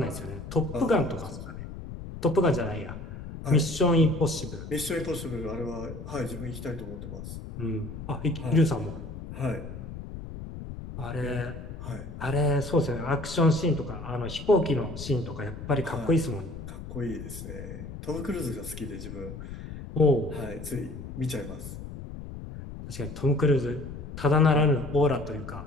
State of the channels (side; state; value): left; noise; rumble, 10 dB below the sound